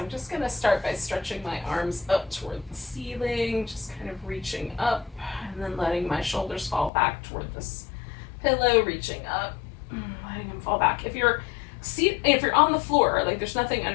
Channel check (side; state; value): right; drops out; at 6.9 s